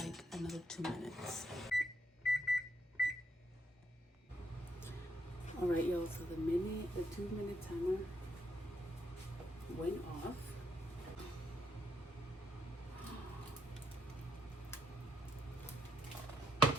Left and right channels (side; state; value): both; normal; correlation 0.77